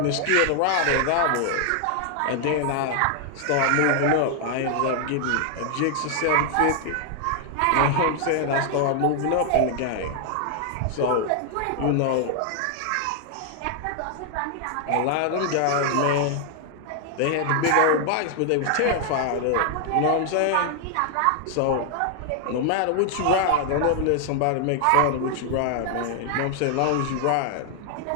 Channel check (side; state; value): both; different; correlation 0.00